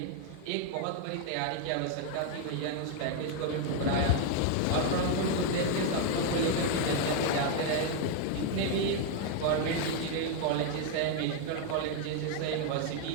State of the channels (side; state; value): both; different; correlation 0.01